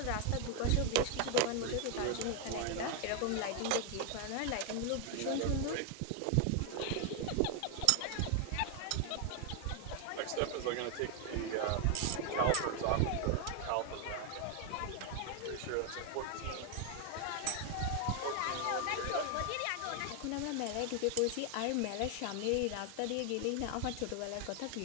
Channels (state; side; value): different; both; correlation 0.01